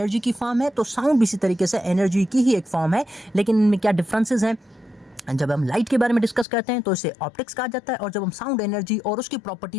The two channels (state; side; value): drops out; right; at 6.5 s